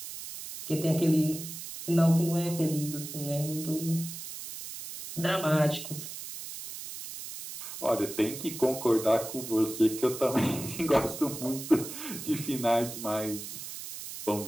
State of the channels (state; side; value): noise; right; hiss, 10 dB below the sound